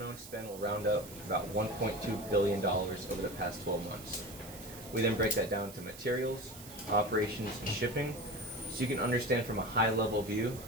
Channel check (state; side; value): noise; right; hiss, 15 dB below the sound